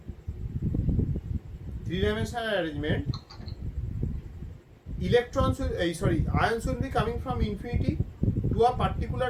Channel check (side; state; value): both; identical; correlation 1.00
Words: ions will be coming from infinity to a particular